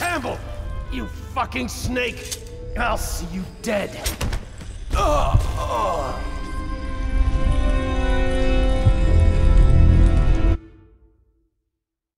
You fucking snake! I'll see you dead.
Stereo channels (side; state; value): both; identical; correlation 1.00